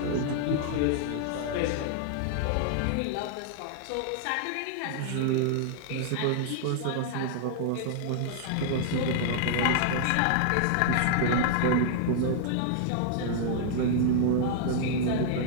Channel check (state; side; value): different; both; correlation -0.01